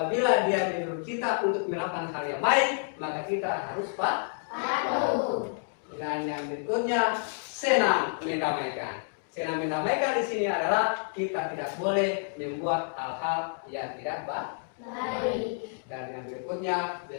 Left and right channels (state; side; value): silent; right; digital silence